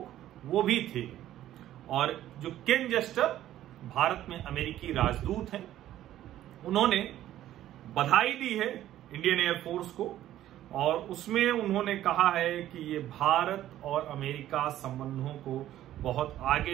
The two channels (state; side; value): quieter; left; 13.0 dB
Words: वो भी थे। और जो केन जेस्टर भारत में अमेरिकी राजदूत हैं, उन्होंने बधाई दी है इंडियन एयरफोर्स को और उसमें उन्होंने कहा है कि ये भारत और अमेरिका संबंधों को बहुत